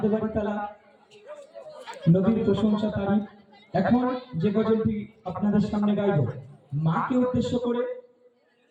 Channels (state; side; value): identical; both; correlation 1.00